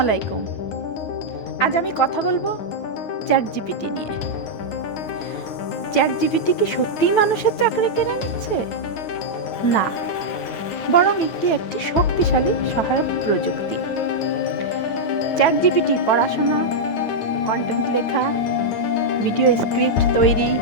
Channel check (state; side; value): late; right; 9.5 ms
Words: আলাইকুম। আজ আমি কথা বলবো চ্যাট জিপিটি নিয়ে। চ্যাট জিপিটি কি সত্যিই মানুষের চাকরি কেড়ে নিচ্ছে? না, বরং একটি শক্তিশালী সহায়ক প্রযুক্তি। চ্যাট জিপিটি পড়াশোনা, কন্টেন্ট লেখা, ভিডিও স্ক্রিপ্ট তৈরি,